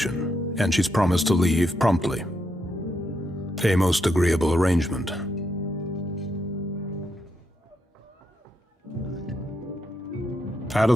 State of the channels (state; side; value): normal; both; correlation 0.80